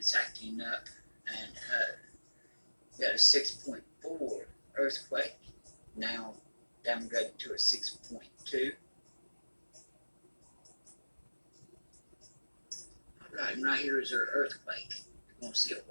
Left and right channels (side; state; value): both; inverted; correlation -1.00